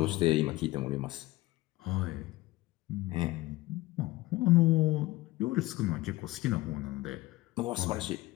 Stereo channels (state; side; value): quieter; right; 19.0 dB